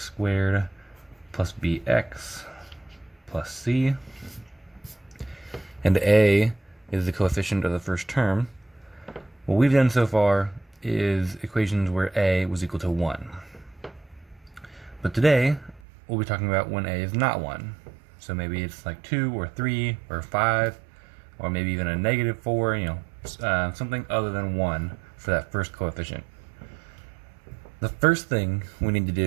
squared plus bx plus c, and a is the coefficient of the first term, what we've done so far is equations where a was equal to 1. But today, we'll be talking about when a is not 1. So maybe it's like 2 or 3 or 5, or maybe even a -4, something other than 1 for that first coefficient. The first thing we need to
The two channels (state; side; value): drops out; left; at 15.8 s